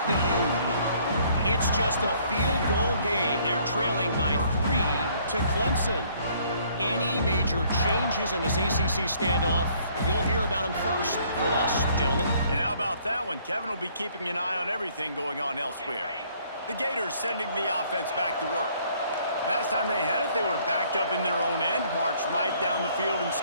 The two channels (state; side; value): inverted; both; correlation -0.62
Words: the U. It's just a field goal game. They're trailing by 3 to Clemson. Any major changes in this ACC standoff, you'll hear about them first from us, gentlemen. And how about that one? Kevin will be keeping an eye on everything going on elsewhere. The Gators sending the offense back to work. Last time they had it, they were backed up in their own end, marched right down the field and